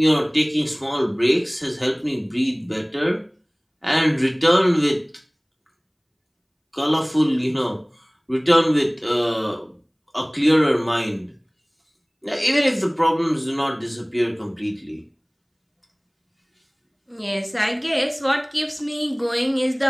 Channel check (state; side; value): identical; both; correlation 1.00